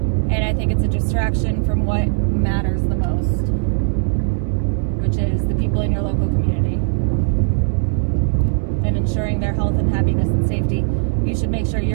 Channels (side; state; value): left; silent; digital silence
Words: I think it's a distraction from what matters the most, which is the people in your local community. And ensuring their health and happiness and safety. You should make sure